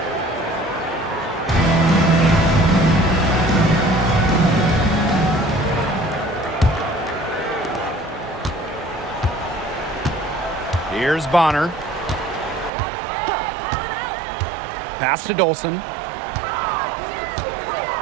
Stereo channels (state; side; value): drops out; left; at 12.7 s